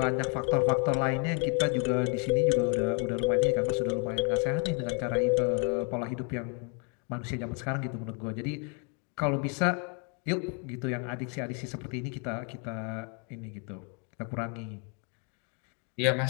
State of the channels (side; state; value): right; quieter; 37.6 dB